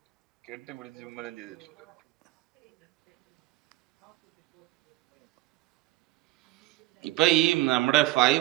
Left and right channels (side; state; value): left; quieter; 18.2 dB